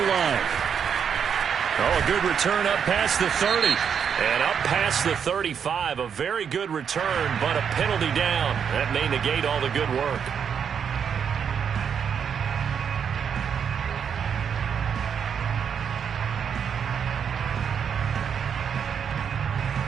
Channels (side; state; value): left; quieter; 7.4 dB